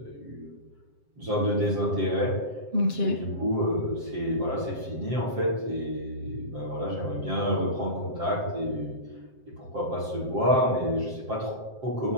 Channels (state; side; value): late; left; 7.6 ms